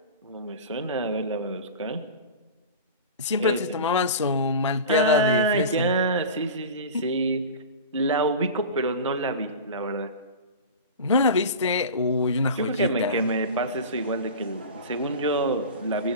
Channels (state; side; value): inverted; both; correlation -0.32